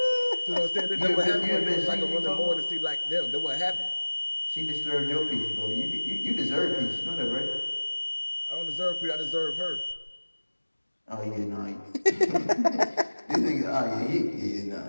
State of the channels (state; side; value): inverted; both; correlation -1.00